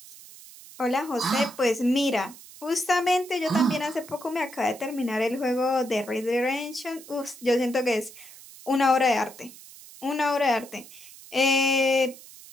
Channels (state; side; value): noise; right; hiss, 19 dB below the sound